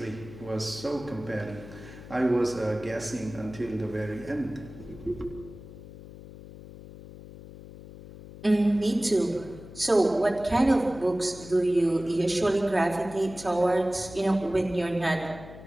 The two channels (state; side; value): noise; left; hum, 16 dB below the sound